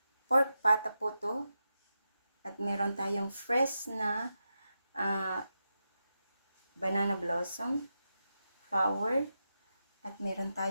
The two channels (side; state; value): both; inverted; correlation -0.88